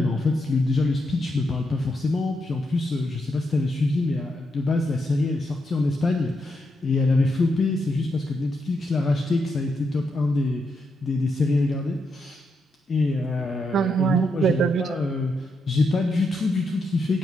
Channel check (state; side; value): normal; both; correlation 0.82